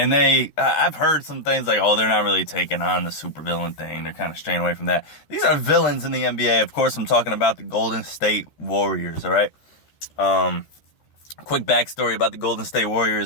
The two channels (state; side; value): late; right; 13 ms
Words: I've heard some things like, oh, they're not really taking on the supervillain thing. They're kind of straying away from that. These are villains in the NBA. Of course, I'm talking about the Golden State Warriors, all right? Quick backstory about the Golden State